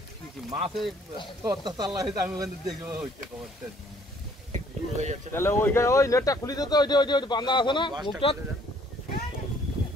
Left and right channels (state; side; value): normal; both; correlation 0.61